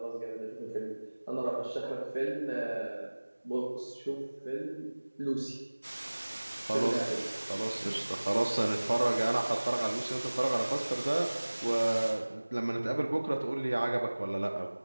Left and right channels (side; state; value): both; inverted; correlation -1.00